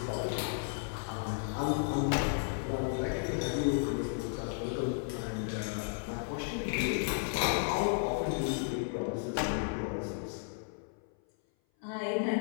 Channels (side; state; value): right; silent; 55 dB below the other